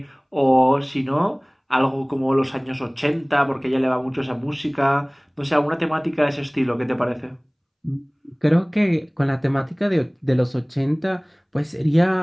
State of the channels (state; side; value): identical; both; correlation 1.00